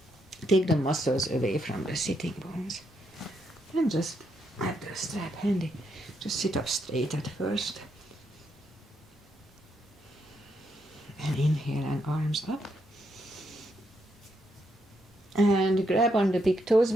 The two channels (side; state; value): both; normal; correlation 0.79